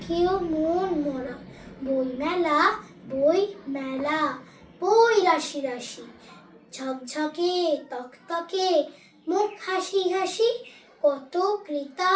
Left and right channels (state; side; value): identical; both; correlation 1.00